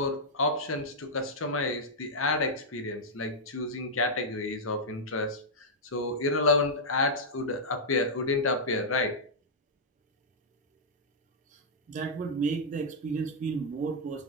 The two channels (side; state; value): both; normal; correlation -0.07